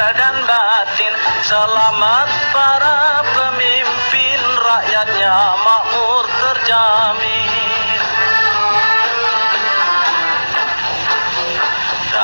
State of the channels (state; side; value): inverted; both; correlation -1.00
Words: dan batin. Selamat para pemimpin, rakyatnya makmur terjamin.